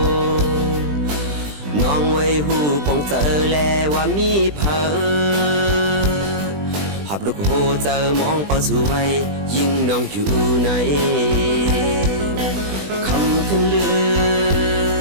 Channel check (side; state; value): left; late; 20 ms